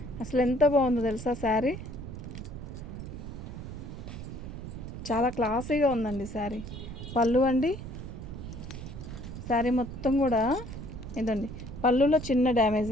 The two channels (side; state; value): right; noise; rumble, 9 dB below the sound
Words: అసలు ఎంత బాగుందో తెలుసా శారీ. చాలా క్లాసీగా ఉందండి శారీ. పళ్ళు అండి, శారీ మొత్తం కూడా ఇదండి. పళ్ళులో చిన్న డ్యామేజ్